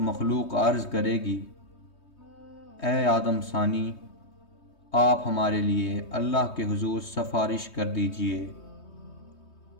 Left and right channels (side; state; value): right; late; 3.2 ms